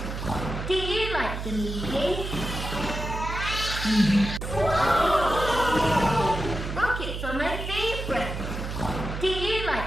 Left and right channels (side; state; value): right; noise; hum, 5 dB below the sound